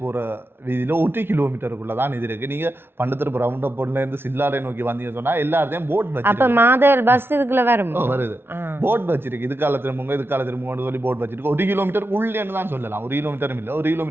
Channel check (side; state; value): left; late; 0.11 ms